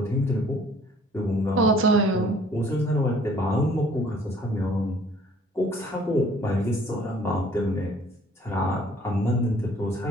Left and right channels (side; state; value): both; normal; correlation 0.57